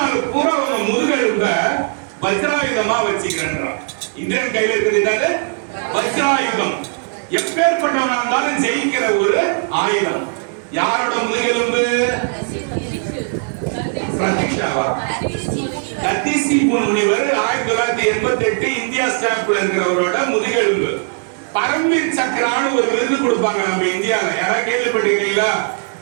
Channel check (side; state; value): left; silent; 57 dB below the other